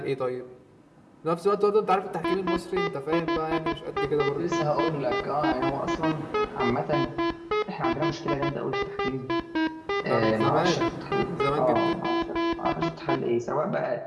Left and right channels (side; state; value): both; identical; correlation 1.00